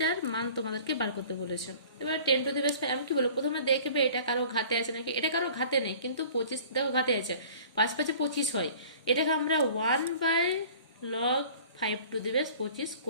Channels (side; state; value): both; inverted; correlation -0.47